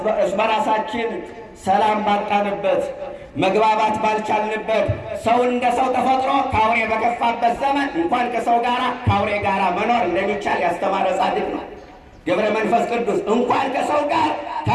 በራሳችን ሰላም ባጣንበት፣ መግባባት ባልቻልንበት ሰው እንደ ሰው ተፈጥሮ ከአውሬ በከፋበት ዘመን እንኳን ከሰው ጋር ከአውሬ ጋር መኖር እንደሚቻል ያስተማረ ጻድቅ ነው ገብረ መንፈስ ቅዱስ። እንኳን ከሰው ጋር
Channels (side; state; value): both; identical; correlation 1.00